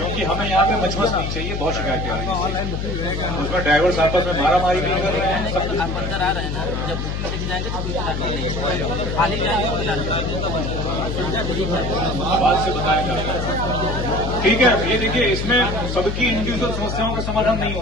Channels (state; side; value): noise; left; hum, 3 dB below the sound